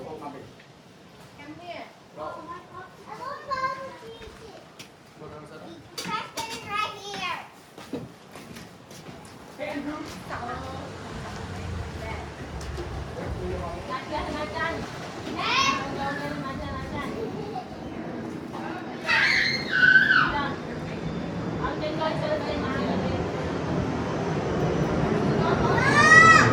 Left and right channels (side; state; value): both; identical; correlation 1.00